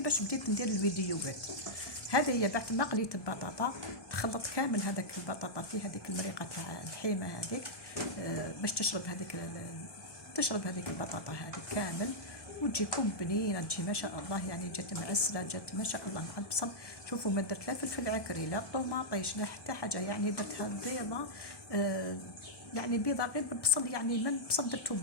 باش بديت ندير الفيديوهات. هذه هي بعد ما قليت البطاطا تخلط كامل هذاك البطاطا في هذيك المريقه تاع الحيمه هذيك باش تشرب هذيك البطاطا هذيك كامل وتجيكم بنينه تجي ما شاء الله. يعني جات معسله جات ما شاء الله مع البصل. شوفوا ما درت لا فلفل عكري لا طوماطيش لا حتى حاجه، يعني درتها بيضه يعني بيضه غير بالبصل، يعني من البصل درتو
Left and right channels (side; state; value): right; late; 1.2 ms